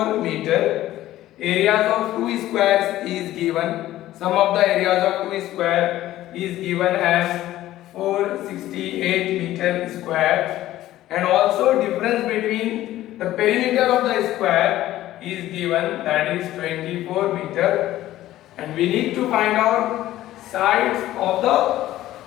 meter. Areas of two squares is given. Sum of the areas of two square is given as 468 meter square, and also difference between the perimeter of the square is given, that is 24 meter, and we need to find out sides of the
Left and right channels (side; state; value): right; quieter; 14.5 dB